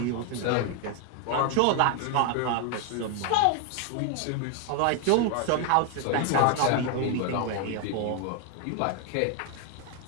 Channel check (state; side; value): different; both; correlation 0.00